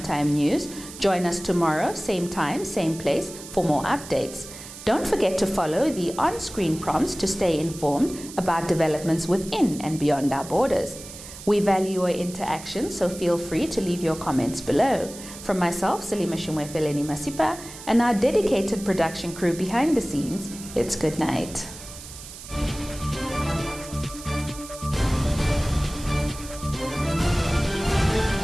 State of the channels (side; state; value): right; noise; hiss, 14 dB below the sound